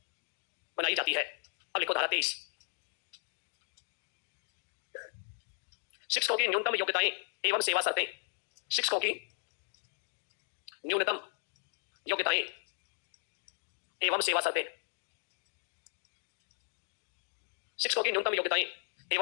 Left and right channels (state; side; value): silent; right; 54 dB below the other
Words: बनाई जाती है। अब लिखो धारा 23, शिक्षकों की न्यूनतम योग्यताएं एवं सेवा शर्तें। शिक्षकों की न्यूनतम योग्यताएं एवं सेवा शर्तें। शिक्षकों की न्यूनतम योग्यताएं